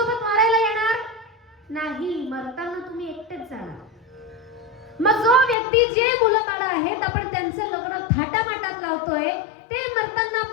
मारायला येणार नाही. मरताना तुम्ही एकटेच जाणार. मग जो व्यक्ती, जे मुलं बाळ आहेत आपण त्यांचं लग्न थाटामाटात लावतोय, ते मरताना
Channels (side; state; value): right; drops out; at 5.6 s